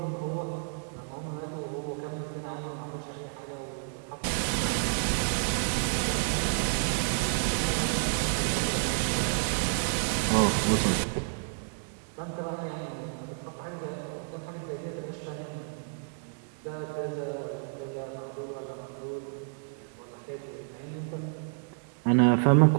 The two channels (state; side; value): silent; left; digital silence